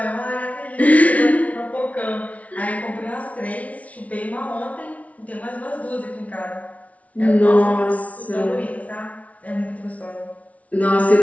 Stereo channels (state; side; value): late; right; 0.067 ms